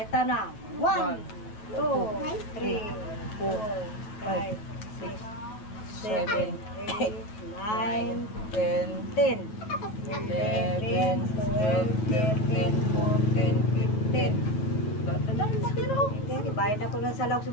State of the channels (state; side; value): late; right; 9.4 ms